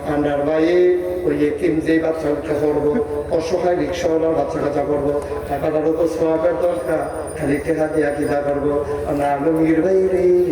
আন্ডার বাইয়ে ওই এতিম যেই বাচ্চা উঠে করবো, অসহায় রিক্সাওয়ালার বাচ্চা কাচ্চা করবো, টাকাটার উপর সোয়াবের দরকার, খালি টেকা দিয়া কিনা করবো। আমরা আলমগীর ভাই রে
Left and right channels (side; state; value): both; identical; correlation 1.00